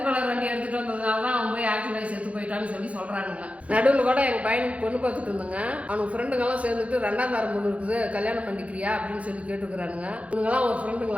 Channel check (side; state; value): left; late; 0.064 ms